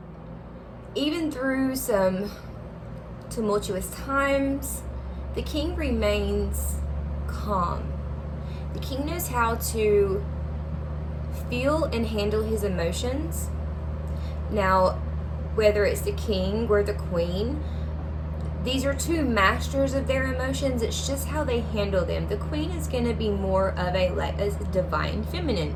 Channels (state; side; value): identical; both; correlation 1.00